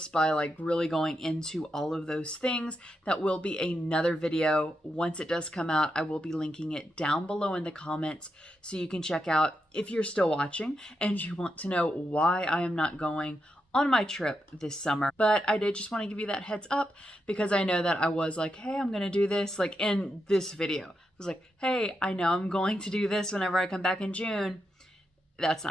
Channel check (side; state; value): both; normal; correlation 0.85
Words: by like really going into all of those things. That will be another video. Once it does come out, I will be linking it down below in the comments so you can check out if you're still watching and you want to know why I am not going on my trip this summer. But I did just want to give you that heads up because I know that I was like, hey, I'm gonna do this like in this video. I was like, hey, I know I'm going to do this whenever I come back in June. That's